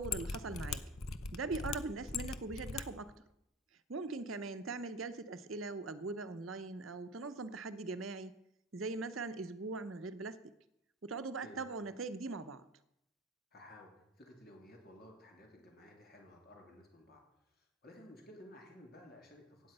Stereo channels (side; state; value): both; normal; correlation 0.34